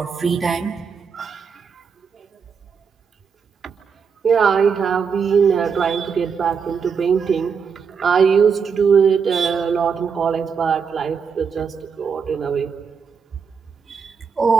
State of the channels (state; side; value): quieter; left; 6.1 dB